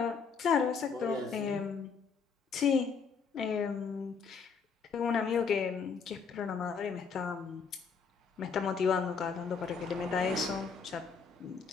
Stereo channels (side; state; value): right; quieter; 5.6 dB